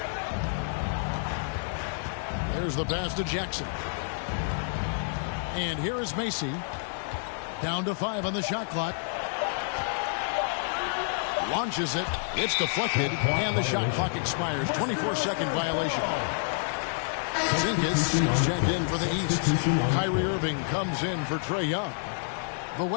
There's the pass to Jackson. And here is Macy. Down to 5 on the shot clock. Launches it. It's deflected. And the shot clock expires. 24-second violation. Zinkas is checked in for the East. Kyrie Irving comes in for Trae Young. The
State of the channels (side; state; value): right; silent; digital silence